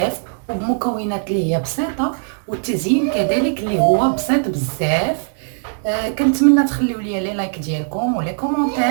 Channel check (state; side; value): silent; left; digital silence